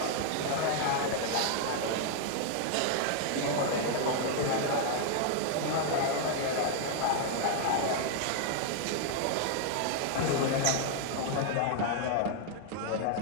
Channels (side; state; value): both; different; correlation 0.00